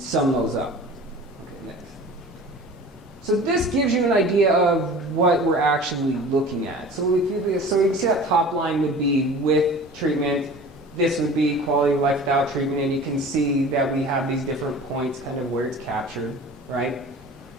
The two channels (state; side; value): normal; both; correlation 0.41